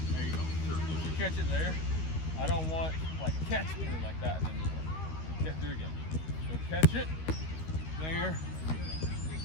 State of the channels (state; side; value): late; right; 13 ms